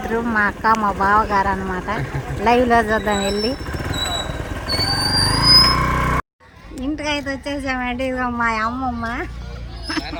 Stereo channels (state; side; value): identical; both; correlation 1.00